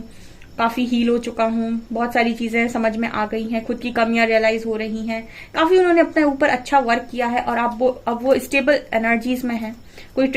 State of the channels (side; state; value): both; identical; correlation 1.00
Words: काफ़ी हील हो चुका हूँ, बहुत सारी चीज़ें समझ में आ गई हैं, खुद की कमियां रियलाइज हो रही हैं। काफ़ी उन्होंने अपने ऊपर अच्छा वर्क किया है और अब वो स्टेबल एनर्जीज में है। कोई